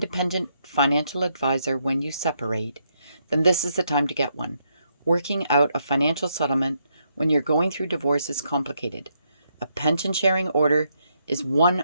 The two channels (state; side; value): inverted; both; correlation -0.77